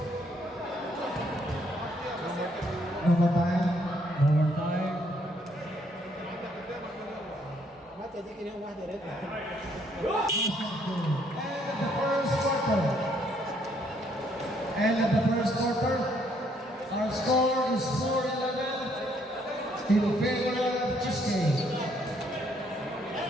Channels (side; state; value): both; normal; correlation 0.69